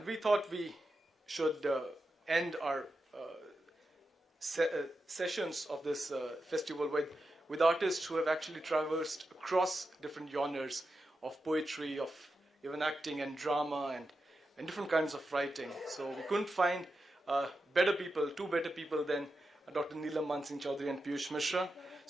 we thought we should end our sessions of this festival with artists who have actually traversed across different genres of poetry, of even acting and drama and different kinds of writing. So we couldn't find two better people than Dr. Neelam Mansingh Chaudhary and Piyush Mishra.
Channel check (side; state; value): both; normal; correlation 0.89